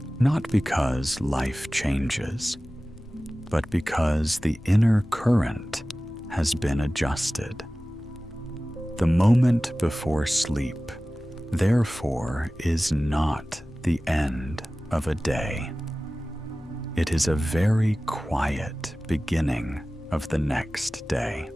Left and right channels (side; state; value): both; normal; correlation 0.97